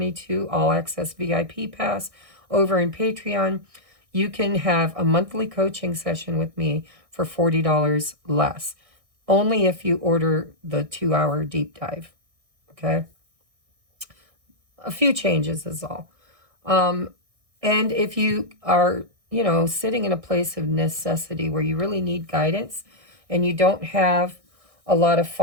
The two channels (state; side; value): late; left; 1.6 ms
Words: All Access VIP Pass over in Patreon, you can have a monthly coaching session with me for $40 less. Only if you order the 2-hour deep dive. Okay? A few changes is all. And if you are, you know, sitting in a place of necessity where you really need guidance and you don't have a lot of